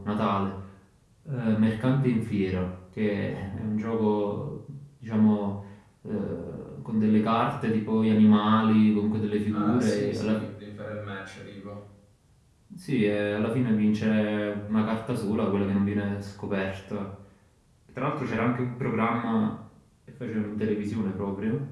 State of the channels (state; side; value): identical; both; correlation 1.00